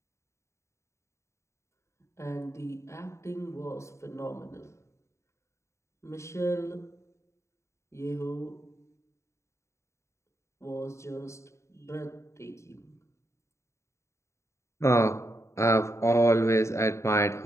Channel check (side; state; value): right; late; 0.14 ms